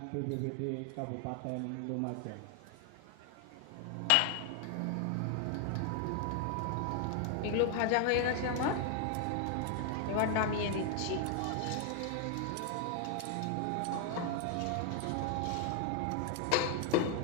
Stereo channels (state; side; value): different; both; correlation 0.00